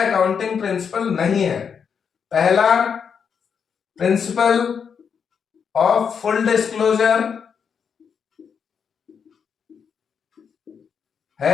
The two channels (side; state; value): right; quieter; 6.8 dB